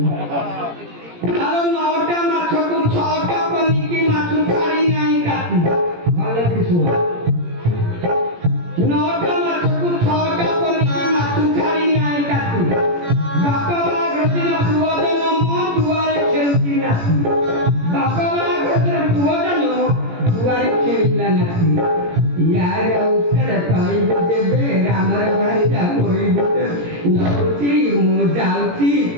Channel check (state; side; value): late; left; 17 ms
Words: आरो नौटा माछ को छटा पनी की माछ छाड़ी नाही काटी भले किसु नौटा माछ को छटा पनी की माछ छाड़ी नाही काटी बापा बा गदिन पुवजन म दुआरे खेलती नासी बापा बा गदिन पुवजन दुआरे खेलला नासी यार उत्तर तई देबे रामर भाई जा कोई बुते नौची मु जाउची